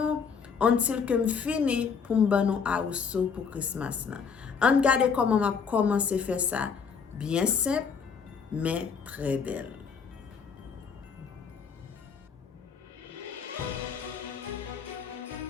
Until que me fini pour me donner house pour Christmas là. On regarde comment m'a commencé à faire ça. Bien simple, mais très belle.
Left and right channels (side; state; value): right; quieter; 6.1 dB